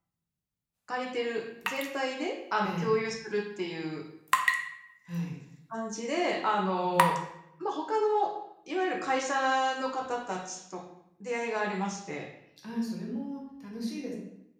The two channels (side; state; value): both; identical; correlation 1.00